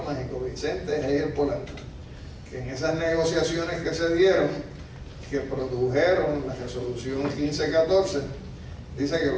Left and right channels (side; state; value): both; identical; correlation 1.00